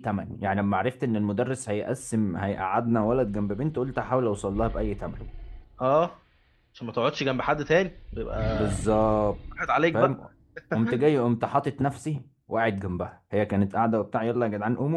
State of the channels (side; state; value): both; identical; correlation 1.00